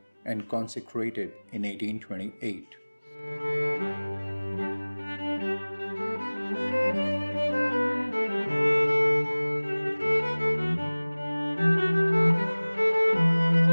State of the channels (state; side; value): inverted; both; correlation -1.00